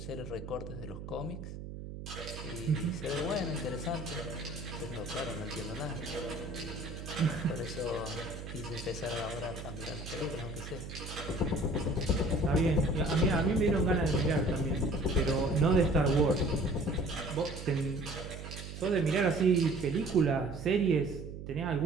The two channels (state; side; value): noise; right; hum, 10 dB below the sound